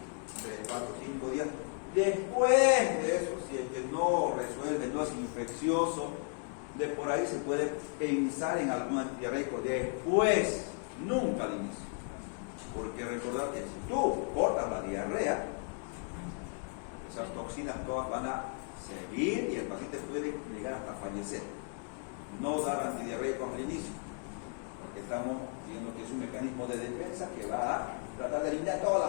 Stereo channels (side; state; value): right; quieter; 39.6 dB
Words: 3, 4, 5 días. Después de eso, si es que no resuelve, no es infeccioso, de por ahí se puede pensar en algún antidiarreico después, nunca al inicio. Porque recordar que si tú cortas la diarrea, esas toxinas todas van a seguir y el paciente puede llegar hasta fallecer. No dar antidiarreicos al inicio, porque estamos viendo que es un mecanismo de defensa que va a tratar de eliminar todas